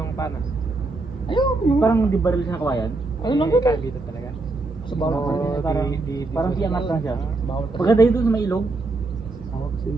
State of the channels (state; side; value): quieter; left; 3.3 dB